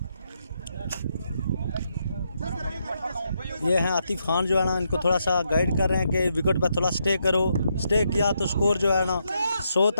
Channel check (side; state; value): both; inverted; correlation -0.79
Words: ये हैं आतिफ खान जो है ना, इनको थोड़ा सा गाइड कर रहे हैं कि विकेट पर थोड़ा स्टे करो, स्टे किया तो स्कोर जो है ना 100